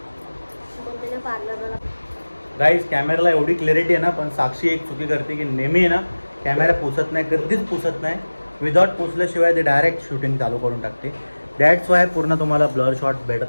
मम्मीने पार्लरला. गाईज कॅमेराला एवढी क्लॅरिटी आहे ना पण साक्षी एक चुकी करते की नेहमी आहे ना कॅमेरा पुसत नाही. कधीच पुसत नाही. विदाउट पुसल्याशिवाय ते डायरेक्ट शूटिंग चालू करून टाकते. दॅट्स वाय पूर्ण तुम्हाला ब्लर शॉट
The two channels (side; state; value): both; inverted; correlation -1.00